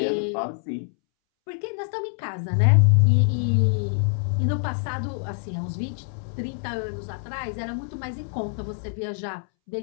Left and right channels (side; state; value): right; silent; 62 dB below the other